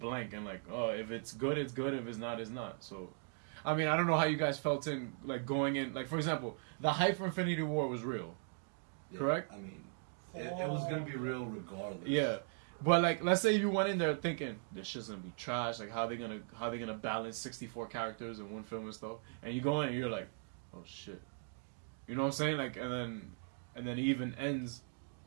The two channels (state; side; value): silent; left; 52 dB below the other